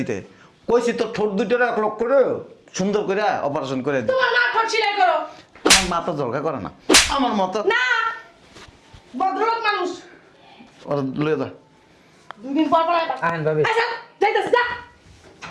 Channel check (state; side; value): identical; both; correlation 1.00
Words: কইছি তোর ঠোঁট দুইটারে 1 লক্ষ করে সুন্দর করে অপারেশন করে দিতে তোমার না ঠট সিলাই করো আমার মাথা জলকা করে না আমার মতো না ভদ্রলোক মানুষ ওর লয়ে যা দুই দিন পর পর আইবা। আহেন ভাবি আচ্ছা যাইতাছি যা